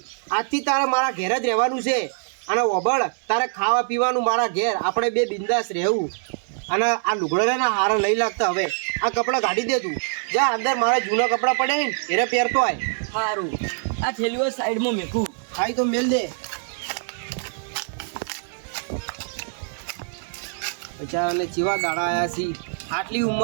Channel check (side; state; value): left; silent; digital silence